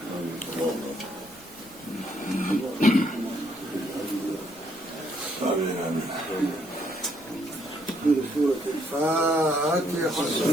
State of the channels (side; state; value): left; noise; rumble, 26 dB below the sound